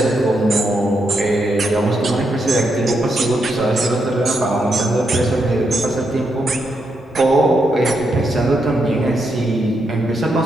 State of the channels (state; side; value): normal; both; correlation 0.81